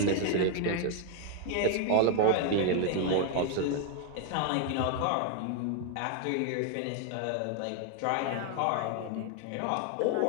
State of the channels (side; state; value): both; different; correlation 0.00